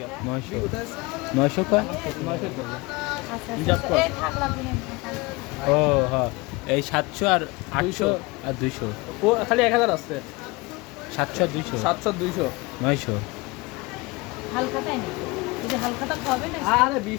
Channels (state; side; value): quieter; right; 24.4 dB